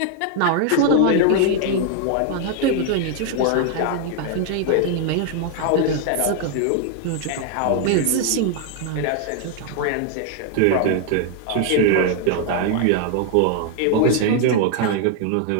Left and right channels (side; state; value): both; different; correlation 0.00